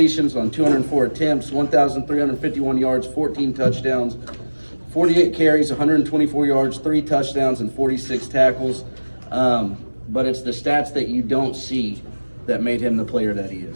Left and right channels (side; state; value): both; inverted; correlation -1.00